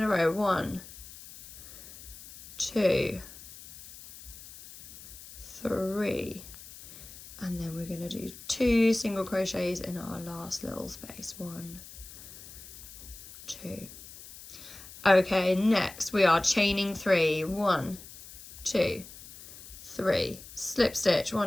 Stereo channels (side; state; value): left; noise; hiss, 16 dB below the sound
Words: a row. 1, 2, 3, and then we're going to do 2 single crochets in our last little space. 1, 2. Okay, next we are chaining 3. 1, 2, 3, slip stitch,